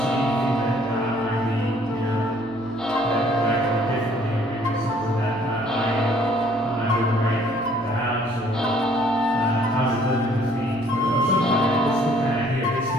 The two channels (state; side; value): noise; right; hum, 21 dB below the sound